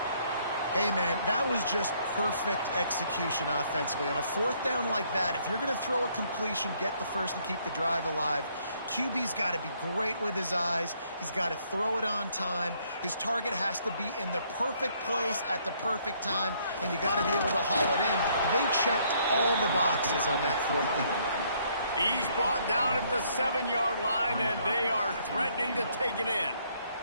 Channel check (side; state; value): both; inverted; correlation -0.67